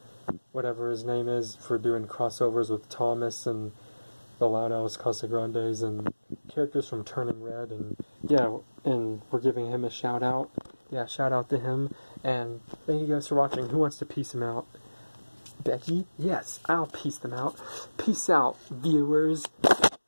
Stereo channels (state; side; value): inverted; both; correlation -1.00